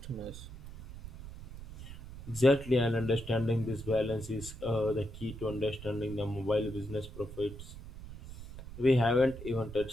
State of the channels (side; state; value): right; noise; rumble, 13 dB below the sound